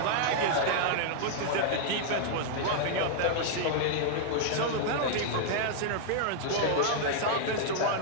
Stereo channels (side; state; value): both; different; correlation -0.01